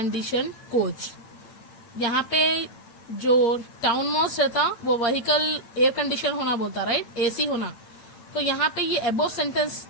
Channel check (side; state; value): right; late; 8.6 ms